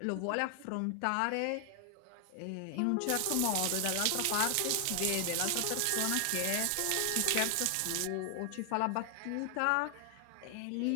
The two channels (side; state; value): both; different; correlation 0.00